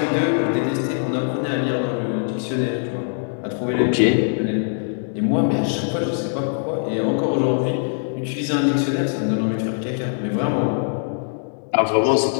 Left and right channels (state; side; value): silent; right; digital silence